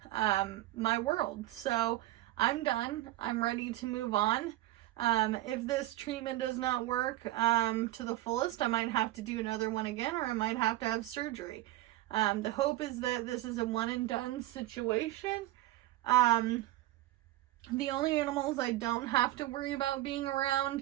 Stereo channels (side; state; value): left; quieter; 15.8 dB